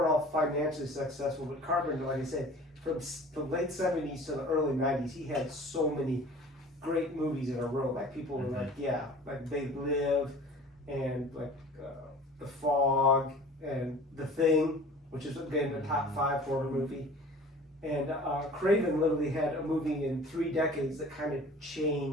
all financially successful, but Carpenter, like I said, from the late 70s to the early 90s, he had so many great movies in a row. Like people were like, yeah, like They Live, and like The Fog, and The Thing, which is again the top 5 horror movie. And Craven literally had a movie in 3 decades that kind of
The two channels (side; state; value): both; normal; correlation 0.44